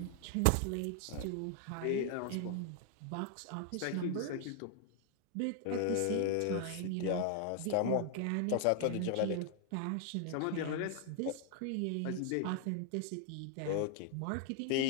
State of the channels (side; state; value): both; different; correlation 0.00